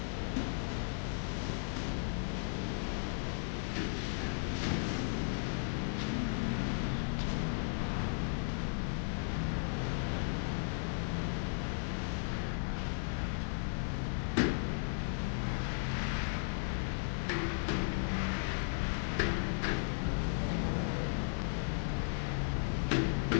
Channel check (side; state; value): right; silent; digital silence